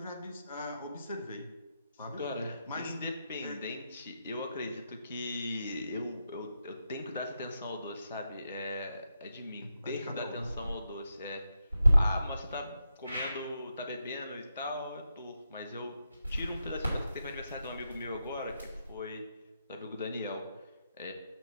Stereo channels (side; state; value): both; inverted; correlation -0.85